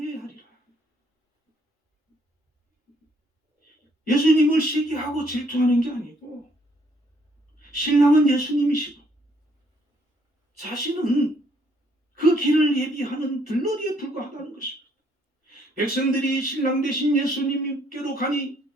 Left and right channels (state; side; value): normal; both; correlation 0.67